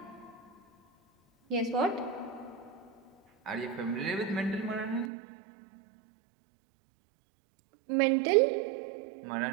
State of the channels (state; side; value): drops out; left; at 5.1 s